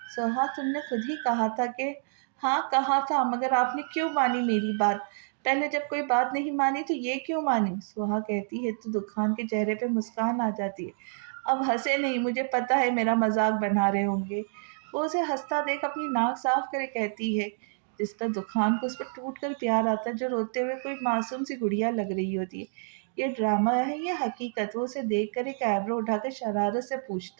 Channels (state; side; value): silent; left; digital silence